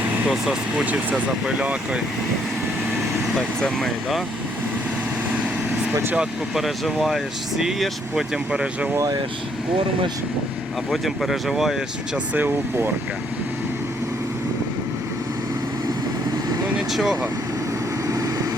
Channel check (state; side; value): normal; both; correlation 0.69